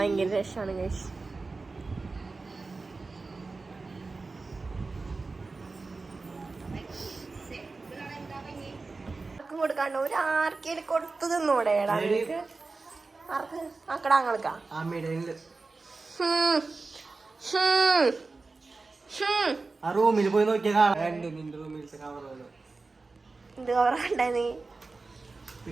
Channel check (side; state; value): left; quieter; 3.8 dB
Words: രസമാണ് ഗൈസ്. കൊടുക്കാണ്ട് ഒരു ആർക്കേലും കൊടുത്തു തിന്നൂടെ? ആക്കടാങ്ങൾക്കാ റൂമിൽ പോയി നോക്കിയാ എന്ത് കവറാ നീ?